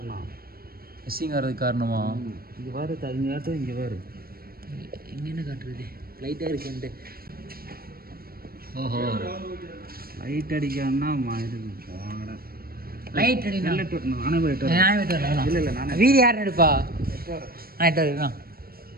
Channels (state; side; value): late; left; 0.44 ms